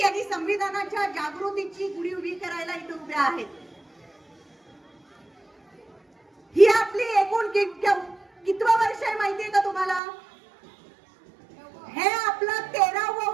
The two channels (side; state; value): left; drops out; at 10.0 s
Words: आणि संविधानाच्या जागृतीची गुढी उभी करायला इथे उभ्या आहेत. ही आपली एकूण कितवं वर्ष आहे माहितीये का तुम्हाला? हे आपलं 13वं